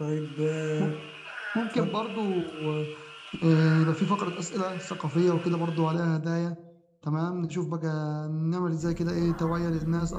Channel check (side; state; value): both; identical; correlation 1.00